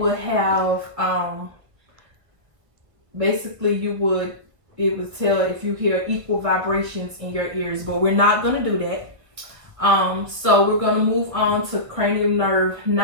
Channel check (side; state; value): left; late; 1.4 ms